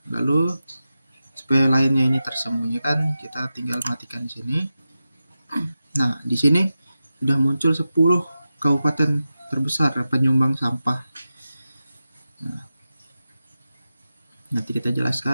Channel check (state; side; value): inverted; both; correlation -0.93